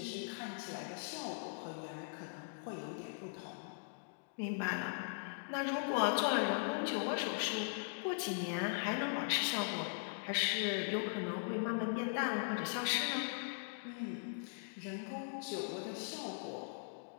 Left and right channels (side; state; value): right; silent; digital silence